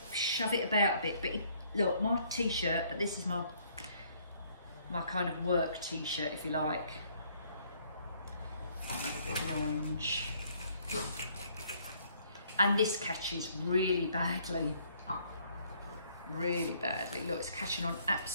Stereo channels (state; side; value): inverted; both; correlation -0.64